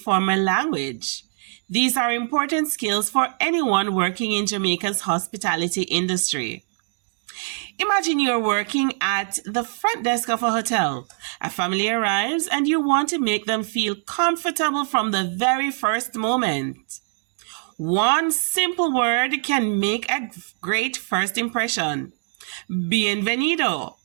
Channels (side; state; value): left; silent; 60 dB below the other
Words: language. These are important skills for anyone working in Jamaica's hospitality industry. Imagine you're working at the front desk of a hotel. A family arrives and you want to make them feel comfortable from the very first moment. One simple word can make a great first impression. Bienvenido,